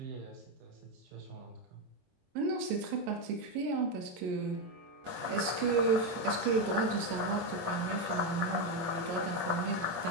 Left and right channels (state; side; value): late; left; 22 ms